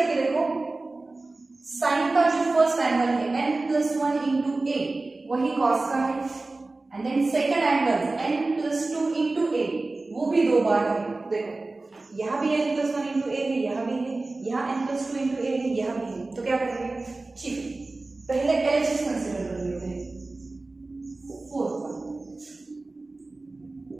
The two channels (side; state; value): left; quieter; 3.3 dB